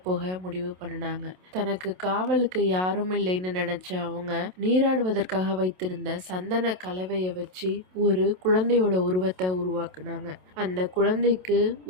போக முடிவு பண்ணினாங்க. தனக்கு காவலுக்கு யாரும் இல்லைன்னு நினைச்ச அவங்க நீராடுவதற்காக வைத்திருந்த சந்தன கலவையை வச்சு ஒரு குழந்தையோட உருவத்தை உருவாக்குனாங்க. அந்த குழந்தைக்கு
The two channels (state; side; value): late; left; 27 ms